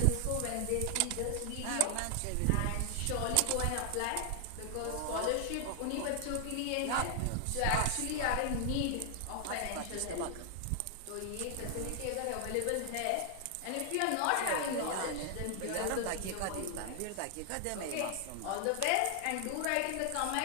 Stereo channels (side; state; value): both; different; correlation 0.00